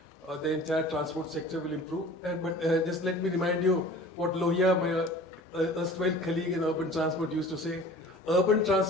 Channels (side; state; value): both; normal; correlation 0.43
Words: the entire transport sector will improve. But just let me remind you what Lohia, my erstwhile colleague in urban transport, used to say. Urban